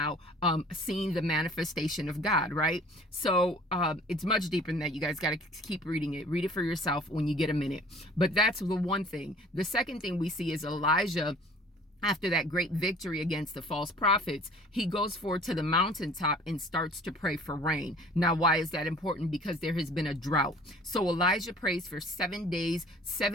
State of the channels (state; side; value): normal; both; correlation 0.50